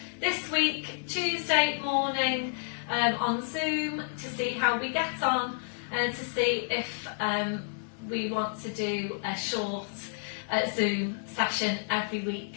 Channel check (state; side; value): silent; right; digital silence